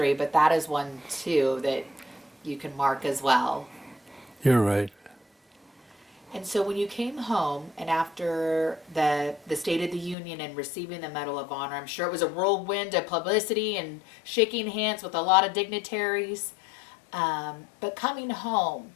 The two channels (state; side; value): drops out; right; at 10.2 s